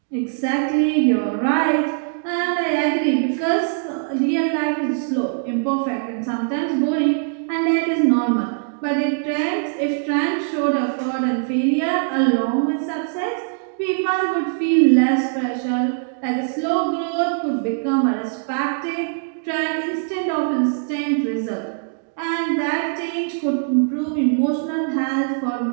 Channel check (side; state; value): left; silent; digital silence